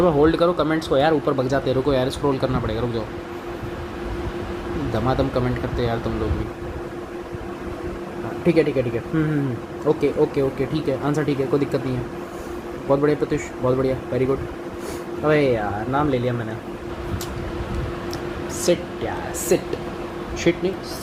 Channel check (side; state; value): both; identical; correlation 1.00